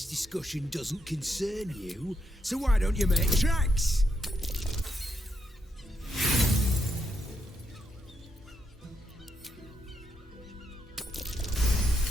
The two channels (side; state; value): both; normal; correlation 0.80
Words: discussion doesn't concern you, so why don't you make tracks?